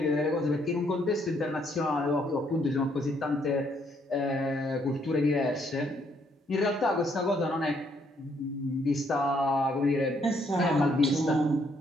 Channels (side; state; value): both; normal; correlation 0.70